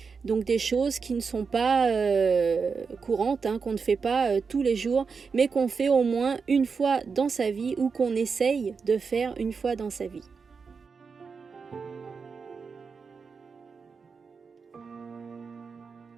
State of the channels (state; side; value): quieter; left; 5.3 dB